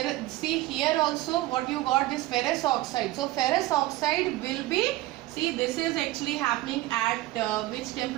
see here also what you got, this ferrous oxide. So ferrous oxide will be, see, this is actually happening at which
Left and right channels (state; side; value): quieter; left; 17.3 dB